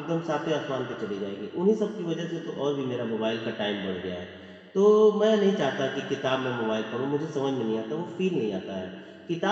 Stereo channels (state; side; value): identical; both; correlation 1.00